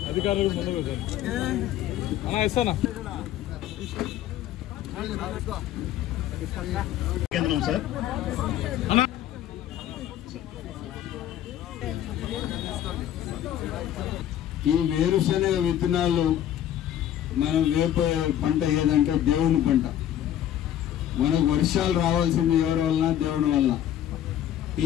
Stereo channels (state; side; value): quieter; right; 11.5 dB